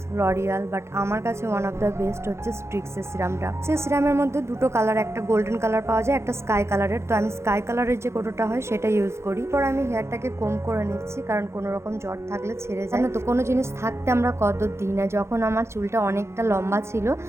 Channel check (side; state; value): left; late; 0.13 ms